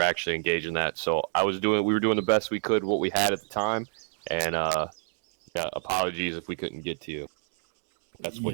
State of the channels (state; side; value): silent; left; 59 dB below the other